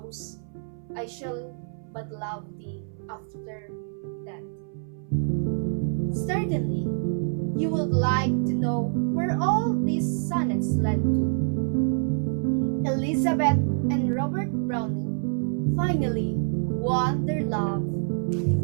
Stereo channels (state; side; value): silent; left; 61 dB below the other